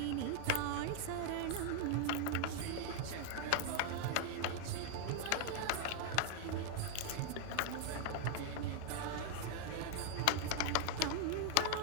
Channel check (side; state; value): both; different; correlation 0.00